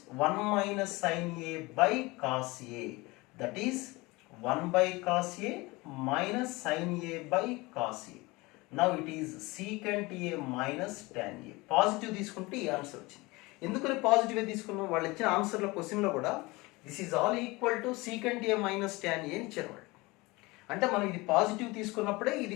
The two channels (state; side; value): quieter; right; 23.0 dB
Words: 1 minus sin a by cos a, that is 1 by cos a minus sin a by cos a. Now it is secant a minus tan a. Positive తీసుకుంటే ఈ answer వచ్చింది. ఎందుకని positive తీసుకున్నాం? వాళ్ళు ఇచ్చిన ఆన్సర్లో క్వశ్చన్లో కూడా this is all equal to secant a minus tan a అని ఇచ్చారు వాళ్ళు. అంటే మనం ఇది పాజిటివ్ తీసుకున్నప్పుడే